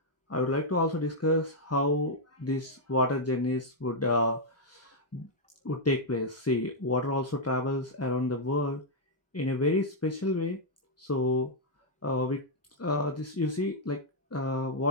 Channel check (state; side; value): normal; both; correlation -0.03